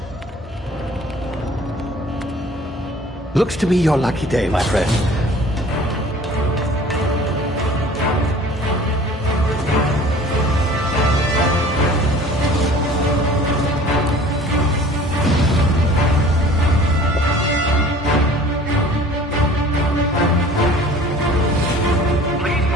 Looks to be your lucky day, my friend. Please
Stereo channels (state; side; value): normal; both; correlation 0.48